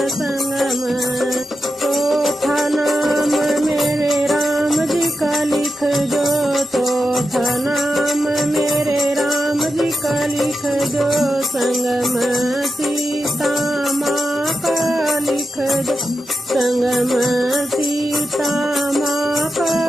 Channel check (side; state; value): both; normal; correlation 0.89